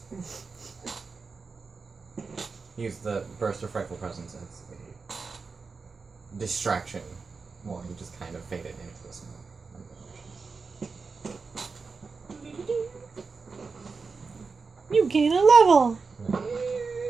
Use the burst of frightful presence as a distraction while he just kind of faded into the smoke. You gain a level!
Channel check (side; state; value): left; quieter; 4.7 dB